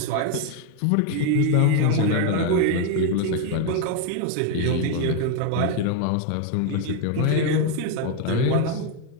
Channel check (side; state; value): both; different; correlation 0.01